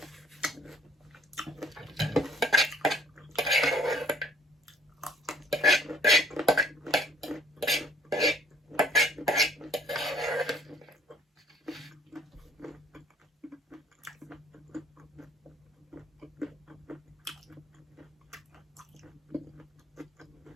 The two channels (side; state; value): both; normal; correlation 0.57